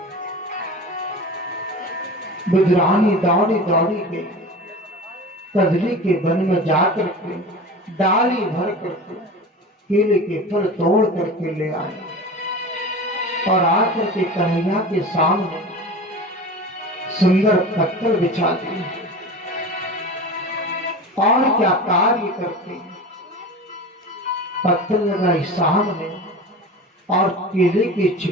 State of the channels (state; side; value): normal; both; correlation 0.33